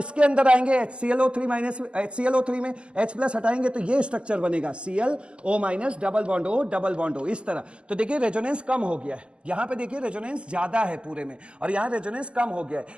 अंदर आएंगे HClO3 में H+ हटाएंगे तो ये स्ट्रक्चर बनेगा, ClO-, double bond O, double bond O, इस तरह। तो देखिए रेजोनेंस कम हो गया है, यहां पे देखिए रेजोनेंस ज्यादा है पूरे में, और यहां रेजोनेंस कम हो गया है।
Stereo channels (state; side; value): late; left; 0.051 ms